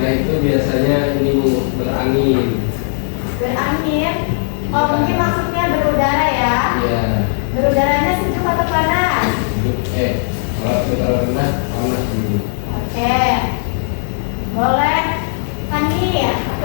itu biasanya ini Bu, berangin. Berangin. Oh, mungkin maksudnya berudara ya? Iya. Berudaranya sejuk atau panas? Kalau dataran rendah panas dulu. Oke. Boleh. Hani,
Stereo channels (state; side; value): silent; right; 68 dB below the other